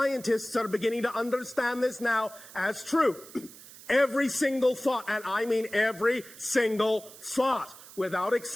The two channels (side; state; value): right; noise; hiss, 18 dB below the sound